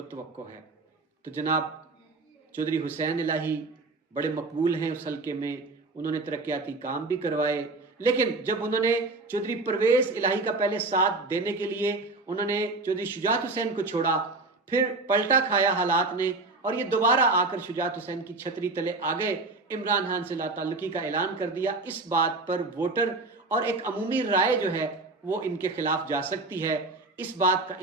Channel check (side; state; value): left; quieter; 3.4 dB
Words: ہے۔ تو جناب چودھری حسین الہی بڑے مقبول ہیں اس حلقے میں، انہوں نے ترقیاتی کام بھی کروائے، لیکن جب انہوں نے چودھری پرویز الہی کا پہلے ساتھ دینے کے لیے انہوں نے چودھری شجاعت حسین کو چھوڑا، پھر پلٹا کھایا حالات نے اور یہ دوبارہ آ کر شجاعت حسین کی چھتری تلے آ گئے، عمران خان سے لا تعلقی کا اعلان کر دیا۔ اس بات پر ووٹر اور ایک عمومی رائے جو ہے وہ ان کے خلاف جا سکتی ہے، اس بات کا